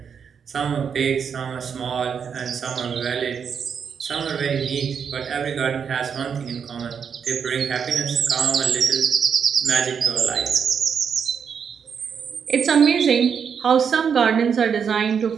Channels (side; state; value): left; quieter; 7.0 dB